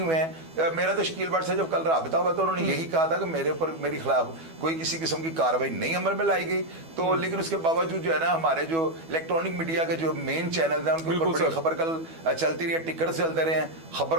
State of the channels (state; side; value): late; left; 12 ms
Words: हैं। मेरा तो शकील भट्ट से जब कल राबिता हुआ तो उन्होंने यही कहा था कि मेरे ऊपर मेरे खिलाफ कोई किसी किस्म की कार्रवाई नहीं अमल में लाई गई। तो लेकिन उसके बावजूद जो है ना, हमारे जो इलेक्ट्रॉनिक मीडिया के जो मेन चैनल हैं उनके ऊपर बड़ी खबर कल चलती रही है, टिकट से चलते रहे हैं,